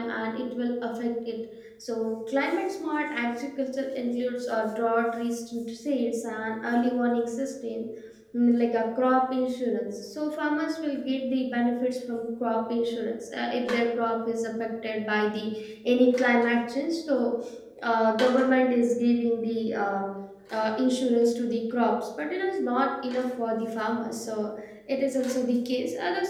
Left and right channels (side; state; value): both; identical; correlation 1.00